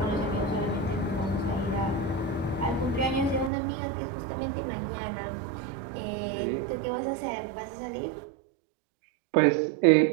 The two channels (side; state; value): left; drops out; at 3.5 s